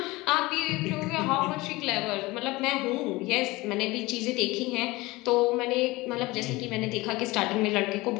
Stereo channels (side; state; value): right; quieter; 21.2 dB